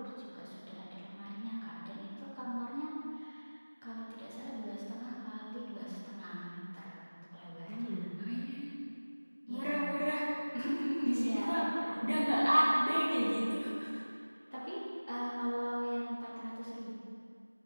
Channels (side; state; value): both; inverted; correlation -1.00